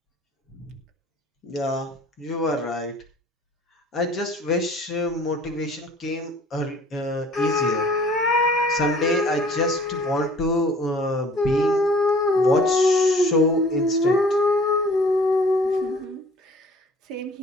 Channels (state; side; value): normal; both; correlation 0.51